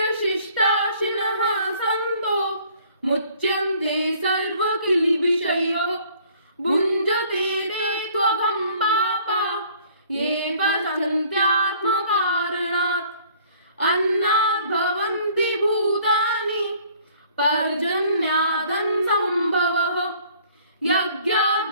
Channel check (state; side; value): inverted; both; correlation -0.57